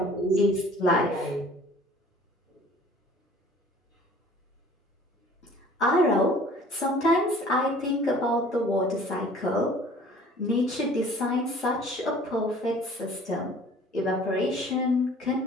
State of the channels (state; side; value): normal; both; correlation 0.50